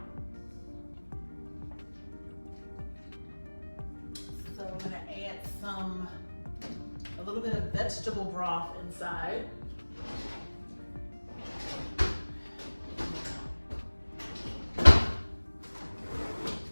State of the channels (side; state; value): both; inverted; correlation -1.00